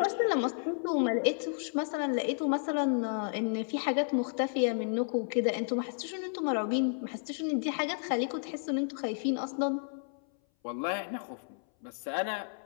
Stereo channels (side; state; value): right; silent; 56 dB below the other